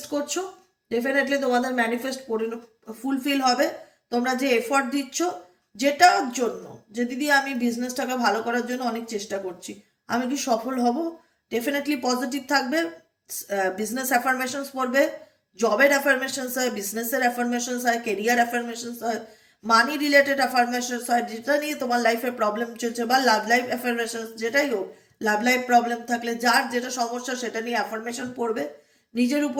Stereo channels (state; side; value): identical; both; correlation 1.00